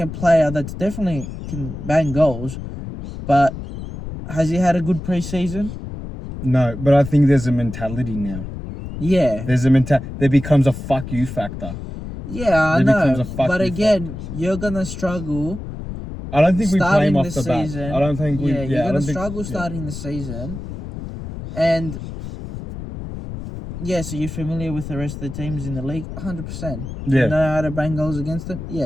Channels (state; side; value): noise; left; rumble, 9 dB below the sound